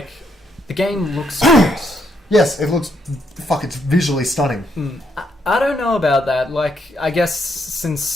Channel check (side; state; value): both; normal; correlation 0.76